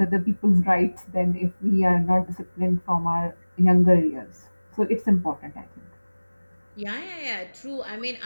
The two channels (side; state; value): both; inverted; correlation -1.00